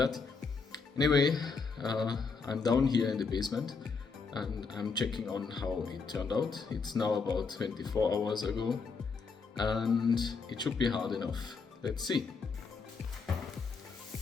Anyway, I'm down here in the basement and I'm checking on how it turned out. It's now about 24 hours ago and it should be hard enough. Let's see.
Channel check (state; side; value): quieter; right; 4.9 dB